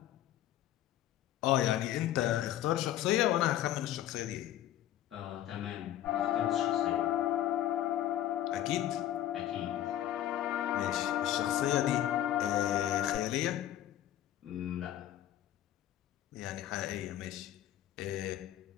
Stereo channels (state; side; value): quieter; right; 12.4 dB